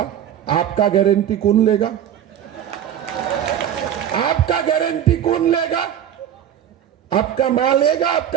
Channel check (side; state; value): left; quieter; 9.9 dB